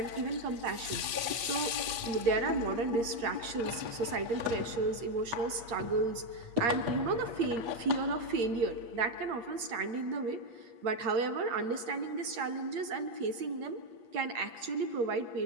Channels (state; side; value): late; left; 8.5 ms